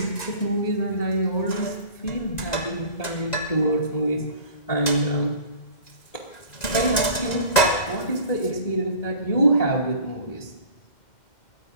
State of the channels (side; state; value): right; late; 1.9 ms